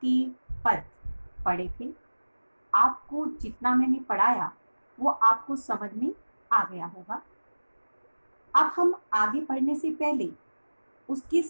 पद पढ़े थे। आपको जितना मैंने पढ़ाया वो आपको समझ में आ गया होगा। अब हम आगे पढ़ने से पहले उसके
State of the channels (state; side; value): inverted; both; correlation -1.00